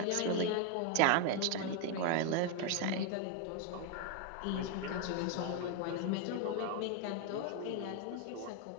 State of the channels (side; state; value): both; different; correlation 0.01